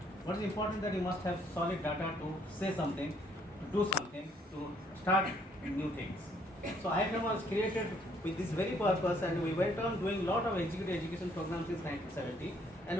What is important that you must have solid data to say something, to do something, to start new things. So IFM was created with this very purpose, and we went on doing a lot of executive education programs since 1970, and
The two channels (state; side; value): normal; both; correlation 0.66